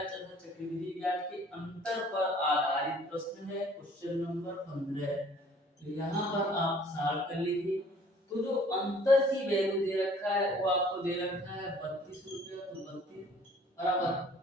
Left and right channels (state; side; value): normal; both; correlation 0.55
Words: तथा चक्रवृद्धि ब्याज के अंतर पर आधारित प्रश्न है क्वेश्चन नंबर 15। तो यहाँ पर आप सॉल्व कर लीजिए। तो जो अंतर की वैल्यू दे रखा है वो आपको दे रखा है 32 रुपया, तो 32 बराबर